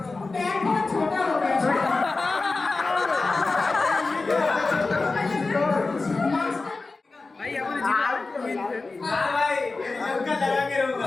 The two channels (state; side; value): quieter; right; 3.7 dB